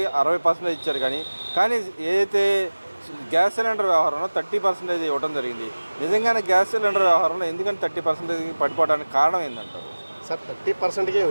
60% ఇచ్చారు, కానీ ఏదైతే గ్యాస్ సిలిండర్ వ్యవహారంలో 30% ఇవ్వడం జరిగింది. నిజంగానే గ్యాస్ సిలిండర్ వ్యవహారంలో ఎందుకని 30% పడిపోవడానికి కారణం ఏంటంటారు? సార్ 30%కి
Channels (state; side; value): inverted; both; correlation -1.00